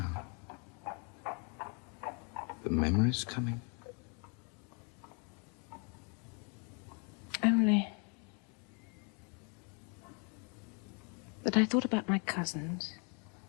The memory's coming. Only that I thought about my cousins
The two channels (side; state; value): right; quieter; 36.3 dB